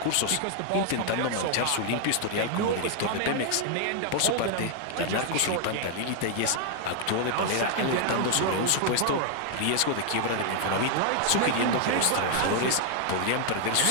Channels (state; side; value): different; both; correlation 0.00